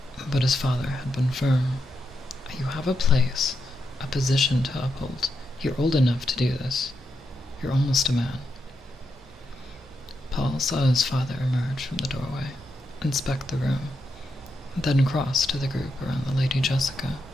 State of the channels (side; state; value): both; normal; correlation 0.84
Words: but his father had been firm. You have a place, a position to uphold. You're old enough to do this. You're almost a man. Paul saw his father emerge from the doorway, inspect the room, then cross to the group around the Lady Jessica.